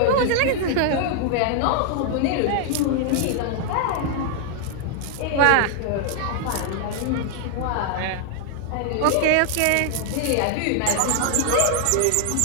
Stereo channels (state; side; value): different; both; correlation 0.00